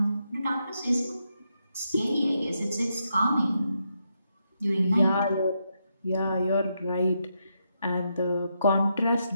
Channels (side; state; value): both; inverted; correlation -0.82